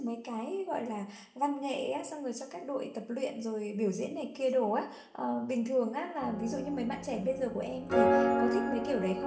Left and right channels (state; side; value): identical; both; correlation 1.00